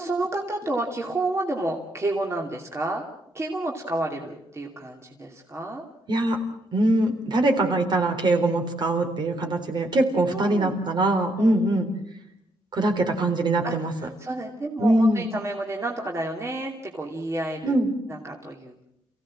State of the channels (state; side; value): normal; both; correlation 0.75